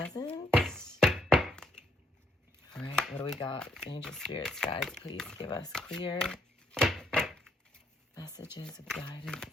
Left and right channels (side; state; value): both; normal; correlation 0.73